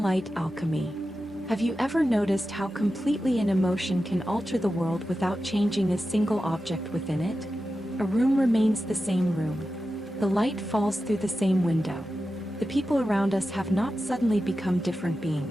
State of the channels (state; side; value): normal; both; correlation 0.92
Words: Light Alchemy. Have you ever noticed how completely an emotion can alter the world without changing a single object within it? A room remains the same room. The light falls through the same window. The people around us have not suddenly become different